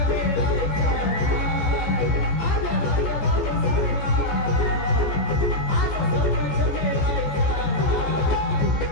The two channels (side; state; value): right; late; 14 ms